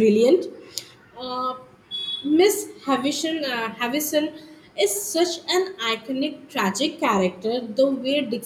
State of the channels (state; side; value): identical; both; correlation 1.00